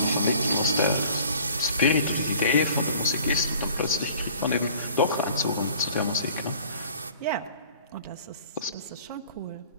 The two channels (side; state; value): both; inverted; correlation -0.50